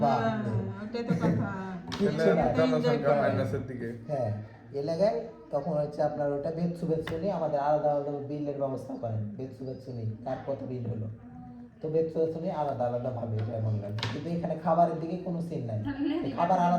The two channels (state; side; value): identical; both; correlation 1.00